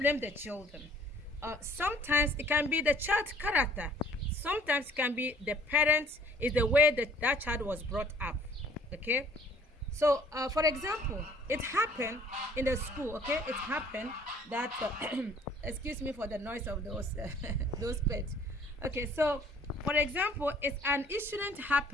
the children. Sometimes it can be the child's character. Sometimes it can be the parents, is the way that child was brought up. Okay, so for example, it happened in the school. Okay, it happened that excuse me for the noise of those those pets. Okay, so for example, it's an incident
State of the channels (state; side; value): normal; both; correlation 0.56